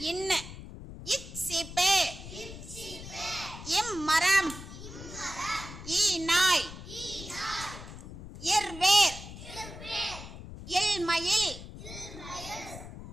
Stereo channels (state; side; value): noise; left; rumble, 12 dB below the sound